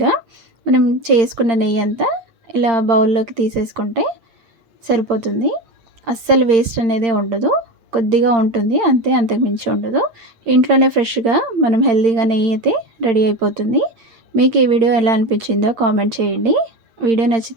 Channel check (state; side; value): late; left; 8.8 ms